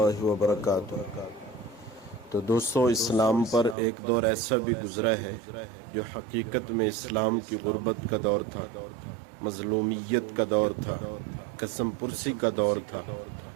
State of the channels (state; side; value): drops out; left; at 3.8 s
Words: وبرکاتہ۔ تو دوستو، اسلام پر ایک دور ایسا بھی گزرا ہے جو حقیقت میں اسلام کی غربت کا دور تھا، مظلومیت کا دور تھا، قسم پرسی کا دور تھا۔